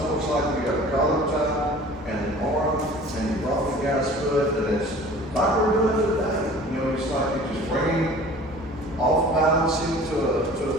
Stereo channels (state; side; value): normal; both; correlation 0.45